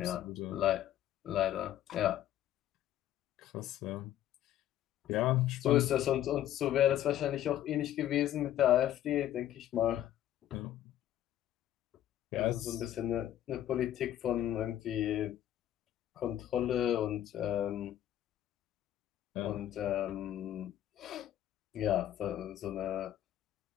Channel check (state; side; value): quieter; right; 12.0 dB